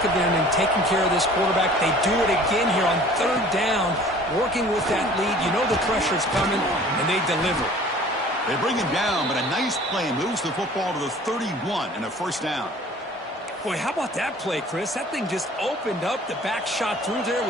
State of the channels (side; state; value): both; normal; correlation 0.49